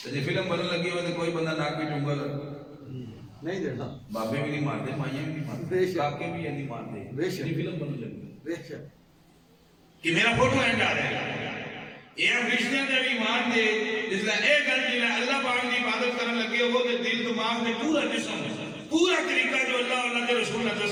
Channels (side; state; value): both; identical; correlation 1.00